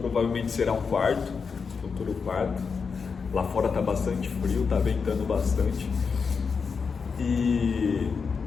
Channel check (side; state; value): right; quieter; 5.5 dB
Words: será um quarto, futuro quarto. Lá fora tá bastante frio, tá ventando bastante. E